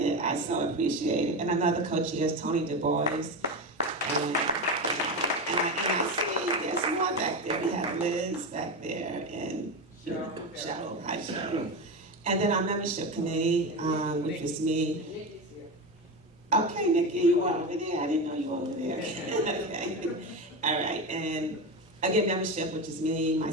I so appreciate it. And another co-chair is Tony Du Bois. And I see there's more back there. We have Liz back there and Cheryl. Hi, Cheryl. And then our membership committee, which is me. Okay, Nikki, you were over there. I didn't know you were over there. Okay. All right. And again, membership, which is me,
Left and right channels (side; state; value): both; normal; correlation 0.19